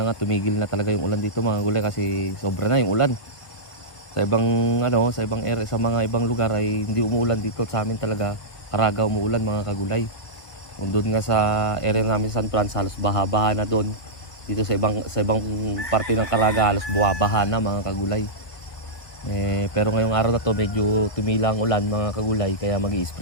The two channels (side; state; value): right; late; 1.3 ms